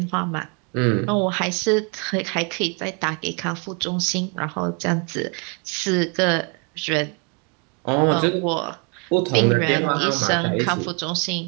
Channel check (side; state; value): left; quieter; 35.1 dB